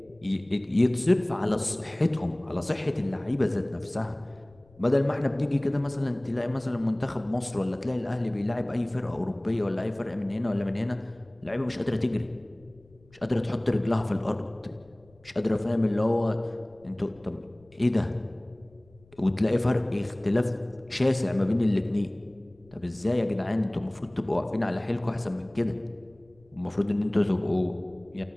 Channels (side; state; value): left; noise; rumble, 29 dB below the sound